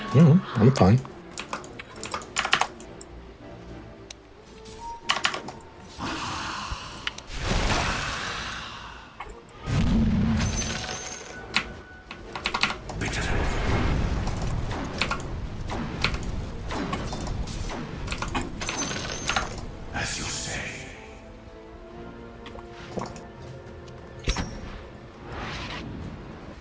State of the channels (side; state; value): both; identical; correlation 1.00